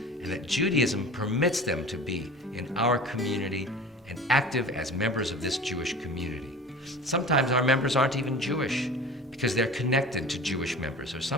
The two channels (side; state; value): both; normal; correlation 0.37